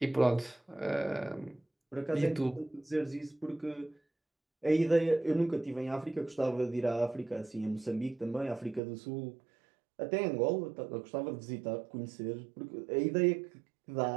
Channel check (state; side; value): drops out; left; at 8.8 s